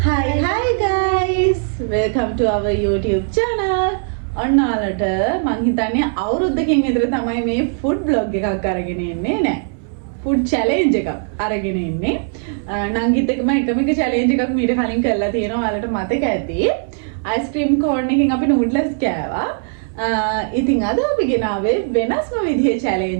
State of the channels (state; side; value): silent; left; 67 dB below the other